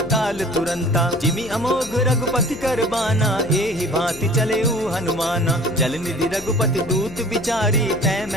तुरंता जिमि अमोघ रघुपति कर बाना एहि भांति चले हनुमाना जल निधि रघुपति दूत बिचारी तै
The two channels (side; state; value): left; noise; hum, 16 dB below the sound